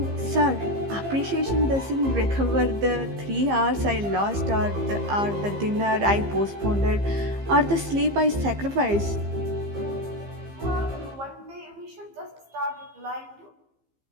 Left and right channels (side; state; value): left; late; 15 ms